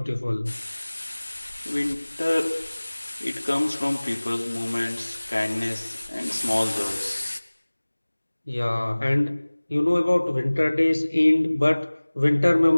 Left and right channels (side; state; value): both; inverted; correlation -1.00